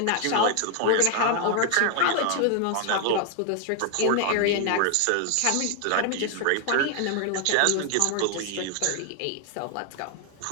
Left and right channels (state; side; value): different; both; correlation 0.00